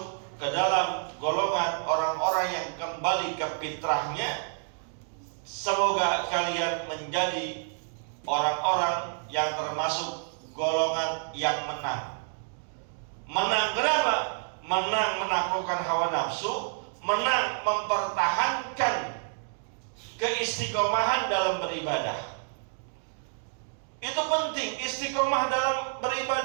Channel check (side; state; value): left; silent; 59 dB below the other